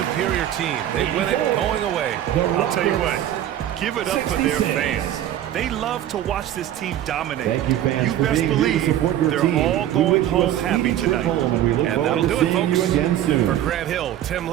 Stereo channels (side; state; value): left; quieter; 11.9 dB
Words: team. They win it going away. I'll tell you what, give it up for their fans. They love to watch this team dominate. Thank you, fans, You for best being here to believe support your they're team. all We going wish you a home happy speedy trip tonight. home, and we look And forward that'll to do it, seeing you folks. again soon. For Grant Hill, Tim